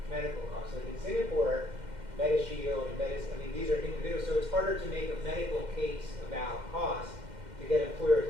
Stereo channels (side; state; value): left; late; 2.1 ms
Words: medical costs. Like in Singapore, MediShield and these are individuals, so it's harder to make a medical case about cost to get